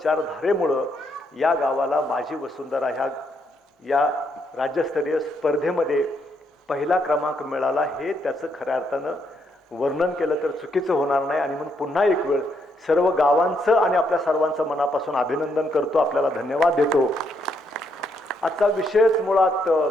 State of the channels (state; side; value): normal; both; correlation 0.75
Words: या गावाला माझी वसुंधरा या राज्यस्तरीय स्पर्धेमध्ये पहिला क्रमांक मिळाला. हे त्याचं खऱ्या अर्थानं वर्णन केलं तर चुकीचं होणार नाही. आणि म्हणून पुन्हा एक वेळ सर्व गावांचं आणि आपल्या सर्वांचं मनापासून अभिनंदन करतो, आपल्याला धन्यवाद देतो. आजचा विषयच मुळात